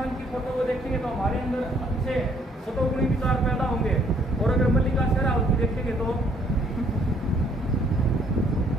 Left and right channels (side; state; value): both; normal; correlation 0.65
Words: की फोटो को देखेंगे तो हमारे अंदर अच्छे सतोगुणी विचार पैदा होंगे, और अगर मल्लिका शेरावत की देखेंगे तो